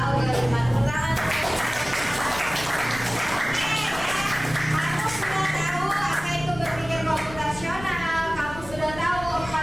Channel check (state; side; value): noise; left; rumble, 14 dB below the sound